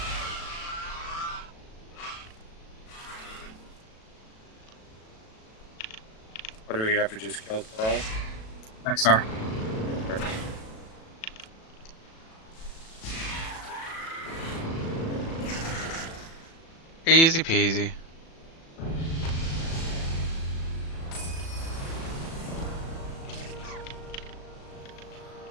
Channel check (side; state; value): right; late; 37 ms